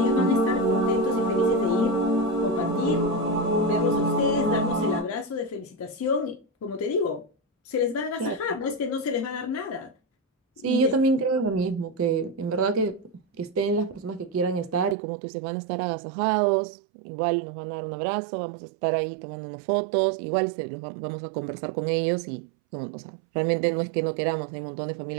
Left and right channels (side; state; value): left; drops out; at 15.0 s